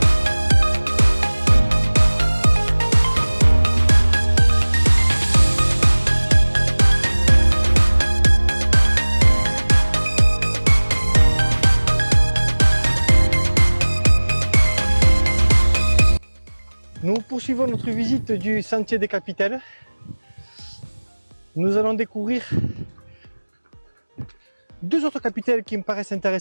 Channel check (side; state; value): both; inverted; correlation -1.00